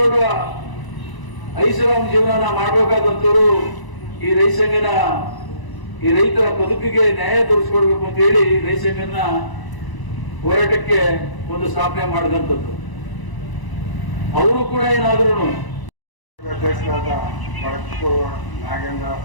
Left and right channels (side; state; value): right; late; 1.0 ms